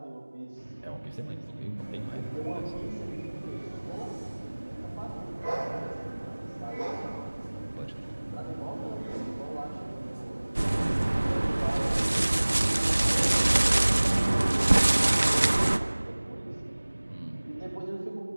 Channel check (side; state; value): both; inverted; correlation -1.00